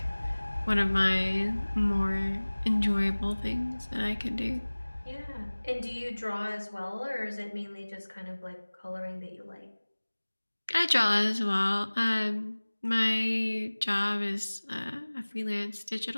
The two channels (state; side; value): inverted; both; correlation -1.00